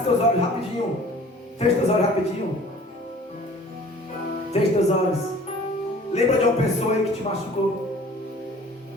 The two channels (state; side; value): normal; both; correlation 0.49